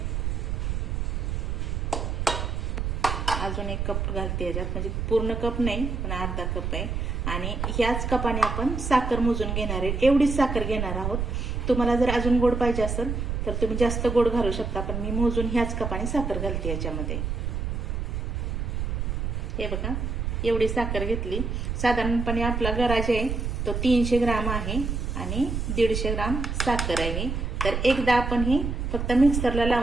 अजून एक कप घालते याच्यात, म्हणजे पूर्ण कप नाही पण अर्धा कप आहे. आणि ह्याच कपाने आपण साखर मोजून घेणार आहे, एवढीच साखर घेणार आहोत. तुम्हाला जर अजून गोड पाहिजे असेल तर तुम्ही जास्त गोड घालू शकता, पण मी मोजून ह्याच कपाने साखर घालते याच्यामध्ये. हे बघा, एवढी साखर घेतली. साधारणपणे आपला गराज आहे तो 300 ग्राम आहे आणि 150 ग्राम साखर आहे. तर एकदा आपण हे फक्त मिक्सरला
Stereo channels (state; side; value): noise; right; rumble, 2 dB below the sound